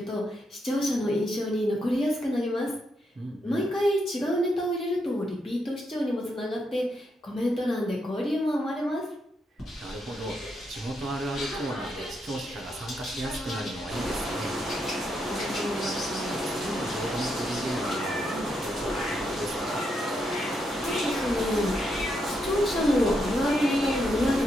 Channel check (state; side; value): normal; both; correlation 0.80